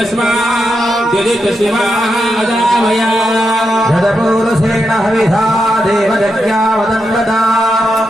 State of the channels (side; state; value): both; normal; correlation 0.85